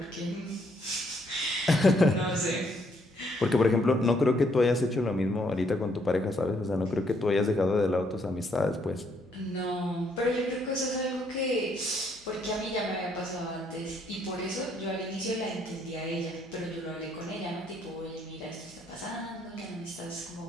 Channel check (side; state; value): both; normal; correlation 0.70